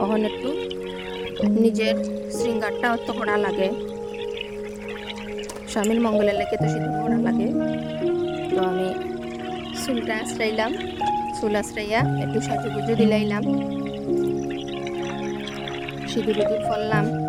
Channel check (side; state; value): both; identical; correlation 1.00